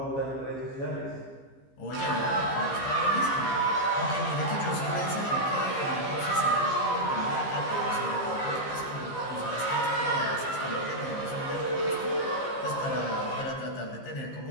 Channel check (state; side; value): late; right; 15 ms